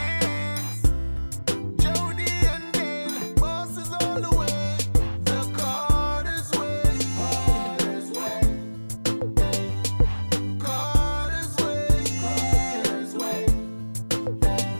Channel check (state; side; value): inverted; both; correlation -1.00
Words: Jody and Dale, bosses all the way. The Carter's way. Carter's way. Carter's way. Carter's way.